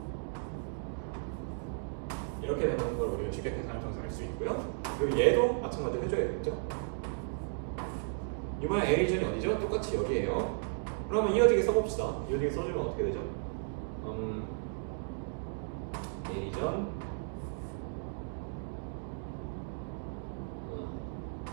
이렇게 되는 걸 우리가 쉽게 계산을 통해서 알 수 있고요. 그리고 얘도 마찬가지로 해줘야 되겠죠? 이번에 A 리전이 어디죠? 똑같이 여기에요. 그러면 이어지게 써봅시다. 이어지게 써주면 어떻게 되죠? A 리전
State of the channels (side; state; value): left; silent; digital silence